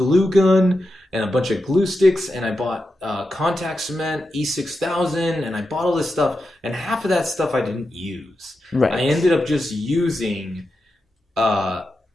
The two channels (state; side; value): normal; both; correlation 0.89